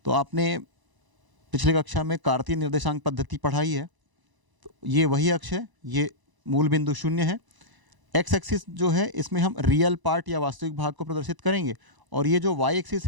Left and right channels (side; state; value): left; late; 1.0 ms